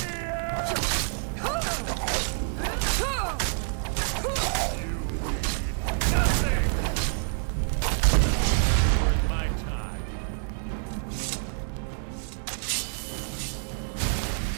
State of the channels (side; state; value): left; silent; 60 dB below the other